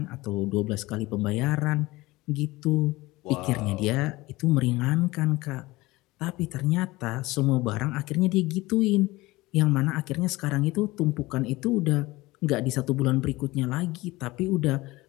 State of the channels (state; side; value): quieter; right; 20.3 dB